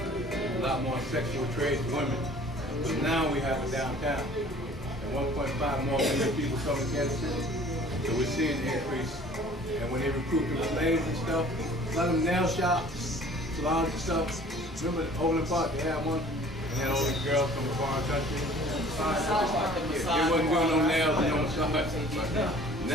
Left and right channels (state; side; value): normal; both; correlation 0.50